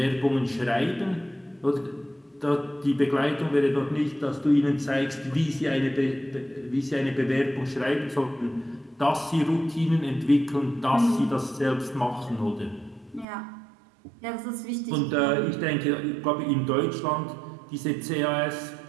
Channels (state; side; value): drops out; left; at 13.2 s